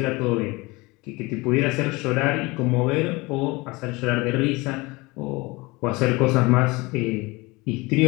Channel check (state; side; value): quieter; right; 23.7 dB